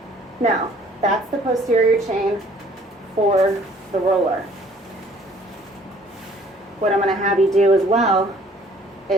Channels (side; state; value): both; normal; correlation 0.57